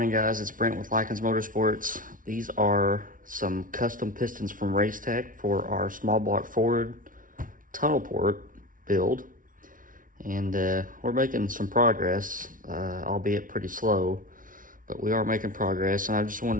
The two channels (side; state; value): left; late; 0.39 ms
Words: guys. It's Brent with Lykins Motorsports. These are some custom pistons from Racetech for our small block Ford tunnel port build. And we're making some progress, albeit pretty slow, but we are making progress. And I just